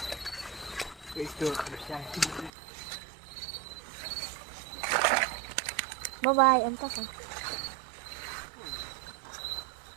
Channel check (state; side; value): drops out; left; at 2.5 s